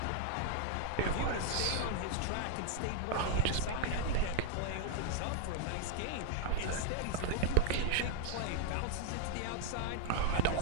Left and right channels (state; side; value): different; both; correlation 0.00